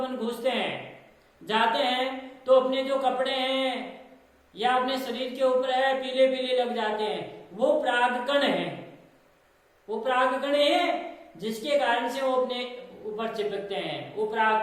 घुसते हैं, जाते हैं, तो अपने जो कपड़े हैं या अपने शरीर के ऊपर है पीले पीले लग जाते हैं। वो परागकण है, वो परागकण है जिसके कारण से वो अपने ऊपर चिपकते हैं, वो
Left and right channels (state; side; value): identical; both; correlation 1.00